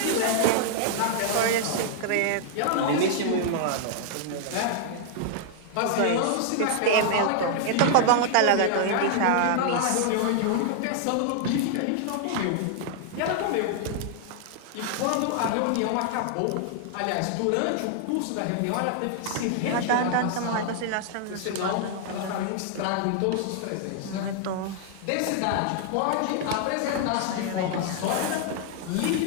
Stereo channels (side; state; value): both; different; correlation -0.01